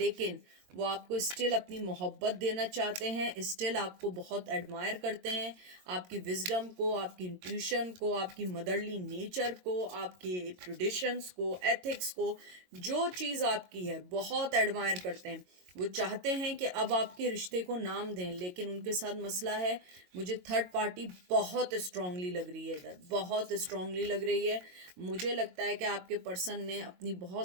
वो आपको स्टिल अपनी मोहब्बत देना चाहते हैं, स्टिल आपको बहुत एडमायर करते हैं, आपकी विजडम को, आपकी इंट्यूशन को, आपकी मदरली नेचर को, आपके ट्रेडिशंस को, एथिक्स को, जो चीज़ आपकी है बहुत एडमायर करते हैं। वो चाहते हैं कि अब आपके रिश्ते को नाम दें, लेकिन उनके साथ मसला है, मुझे थर्ड पार्टी बहुत स्ट्रांगली लग रही है इधर, बहुत स्ट्रांगली लग रही है। मुझे लगता है कि आपके पर्सन ने अपनी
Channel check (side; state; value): left; late; 22 ms